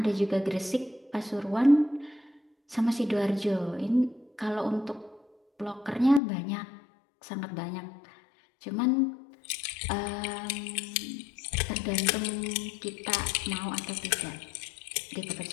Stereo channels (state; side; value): drops out; right; at 6.2 s